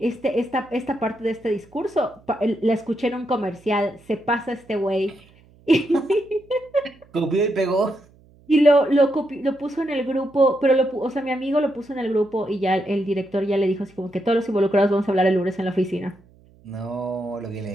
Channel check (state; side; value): noise; right; hum, 28 dB below the sound